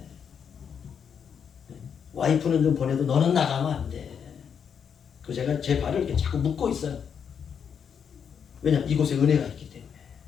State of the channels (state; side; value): quieter; right; 7.3 dB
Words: 와이프는 좀 보내도 너는 나가면 안 돼. 그래서 제가 제 발을 이렇게 자꾸 묶고 있어요. 왜냐? 이곳에 은혜가 있기 때문에.